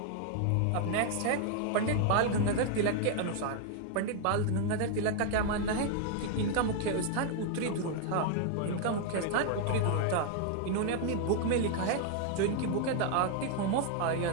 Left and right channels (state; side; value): different; both; correlation 0.00